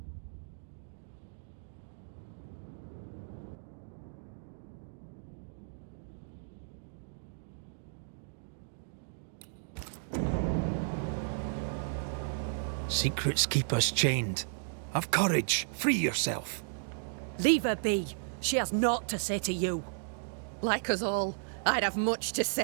Secrets keep us chained. Have courage. Free yourself. Leave her be. She has naught to say to you. Like us all, I'd have much to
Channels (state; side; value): silent; left; digital silence